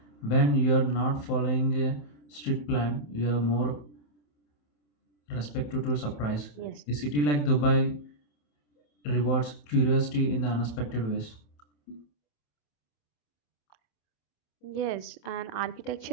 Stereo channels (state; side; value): late; right; 27 ms